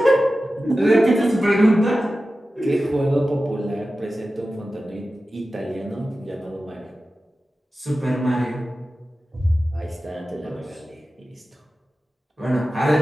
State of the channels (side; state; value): both; normal; correlation 0.94